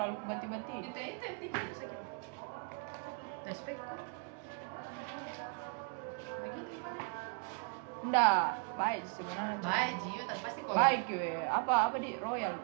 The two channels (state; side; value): quieter; left; 38.3 dB